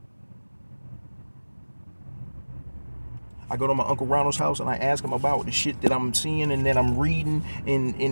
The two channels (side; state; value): both; inverted; correlation -1.00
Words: I go to my Uncle Ronald's house and I ask him about the shit that I'm seeing and that I'm reading